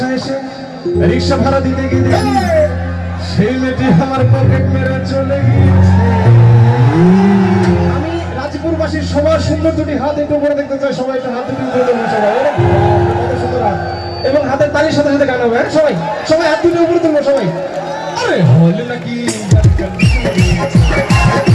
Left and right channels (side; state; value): both; identical; correlation 1.00